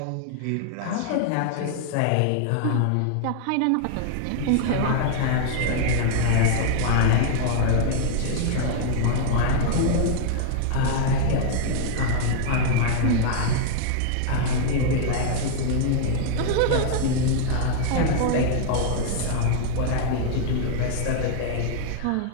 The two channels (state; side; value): different; both; correlation 0.00